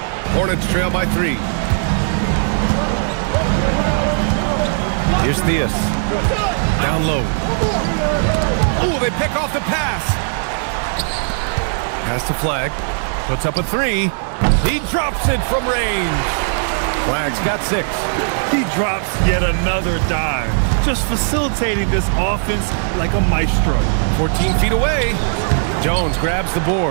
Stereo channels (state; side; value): silent; left; digital silence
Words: Hornets trail by 3. Here's Theus. Down low. Oh, they pick off the pass. Pass to Flag. Puts up a 3. He drops it from range. Flag's got 6. He drops yet another dive, just facilitating this offense like a maestro. 14 feet away. Jones grabs the